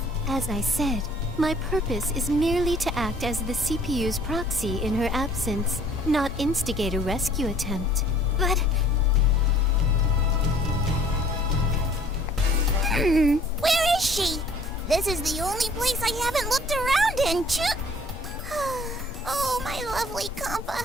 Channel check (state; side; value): normal; both; correlation 0.55